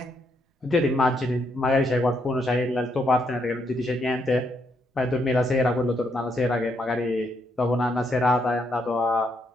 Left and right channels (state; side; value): normal; both; correlation 0.76